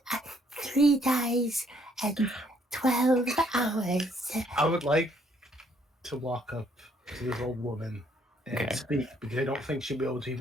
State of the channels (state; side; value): normal; both; correlation 0.67